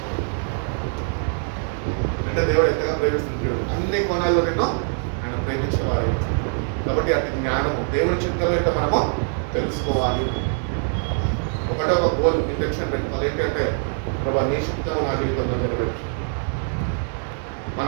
అంటే దేవుడు ఎంతగా ప్రేమిస్తున్నాడు, అన్ని కోణాల్లో నిన్ను ఆయన ప్రేమించేవాడు. కాబట్టి అటు జ్ఞానము దేవుని చిత్తంలో ఏంటో మనము తెలుసుకోవాలి. ఒకటే ఒక గోల్ ఇంటెన్షన్ పెట్టుకోవాలి. ఏంటంటే ప్రభా నీ చిత్తం నా జీవితంలో నెరవేర్చు.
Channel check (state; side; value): silent; left; 56 dB below the other